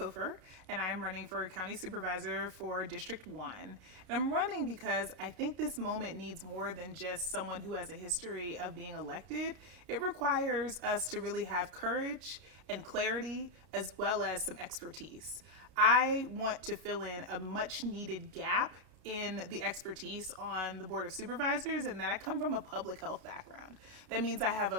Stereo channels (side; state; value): left; late; 32 ms